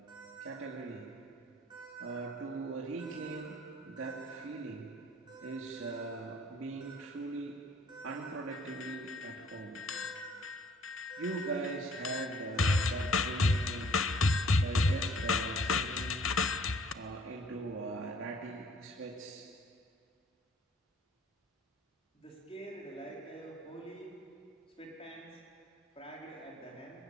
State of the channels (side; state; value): both; normal; correlation 0.58